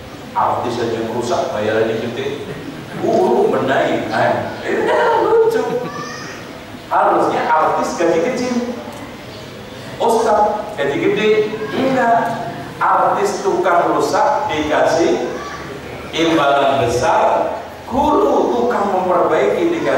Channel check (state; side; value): identical; both; correlation 1.00